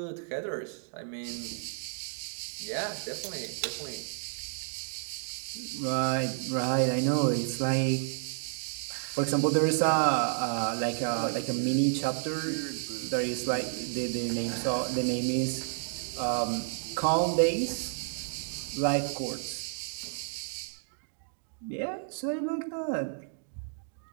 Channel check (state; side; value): silent; left; digital silence